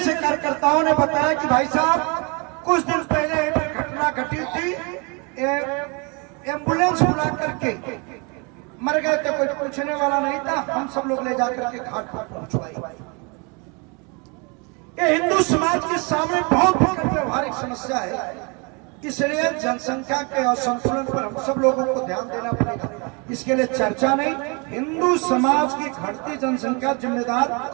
कार्यकर्ताओं ने बताया कि भाई साहब कुछ दिन पहले एक घटना घटी थी, एम्बुलेंस बुला करके मर गए थे, कोई पूछने वाला नहीं था, हम सब लोग ले जाकर के घाट पर पहुंचवाई। ये हिंदू समाज के सामने बहुत व्यवहारिक समस्या है, इसलिए जनसंख्या के असंतुलन पर हम सब लोगों को ध्यान देना पड़ेगा। इसके लिए चर्चा नहीं, हिंदू समाज की घटती जनसंख्या जिम्मेदार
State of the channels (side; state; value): left; quieter; 31.6 dB